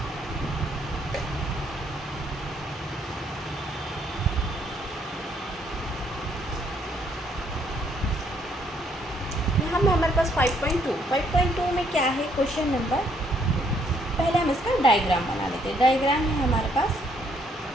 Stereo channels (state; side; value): normal; both; correlation 0.69